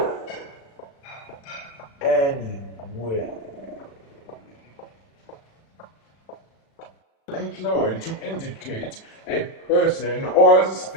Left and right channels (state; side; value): late; right; 36 ms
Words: anyway, employed to indicate a person or